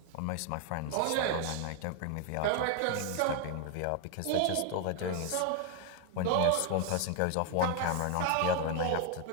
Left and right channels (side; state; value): both; different; correlation 0.01